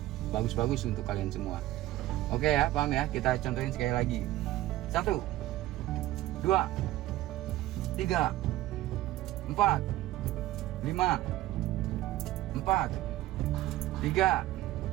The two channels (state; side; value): quieter; left; 15.6 dB